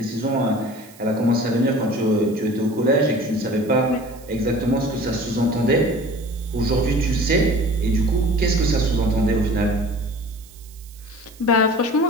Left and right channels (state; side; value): noise; right; hiss, 24 dB below the sound